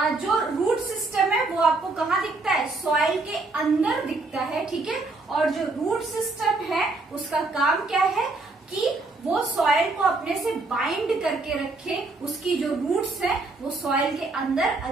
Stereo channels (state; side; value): quieter; left; 3.4 dB